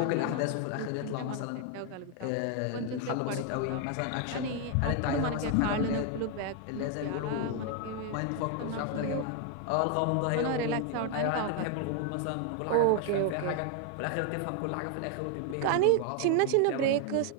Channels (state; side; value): different; both; correlation 0.00